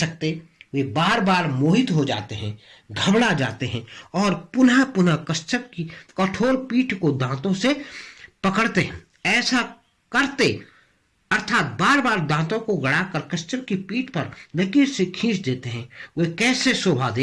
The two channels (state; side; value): identical; both; correlation 1.00